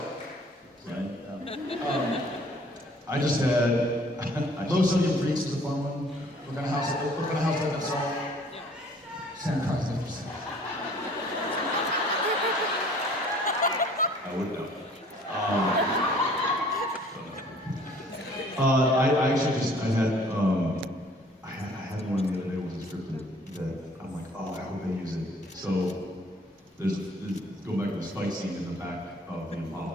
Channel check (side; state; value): both; normal; correlation 0.55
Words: right? I just had Low Sodium Freaks is a fun one. We're gonna house that song. Sam Christ, interesting. I would know. I actually just I had one the other day with a scripted that I'm like, oh, I hope they use it. So there's go back to the fight scene in the back of the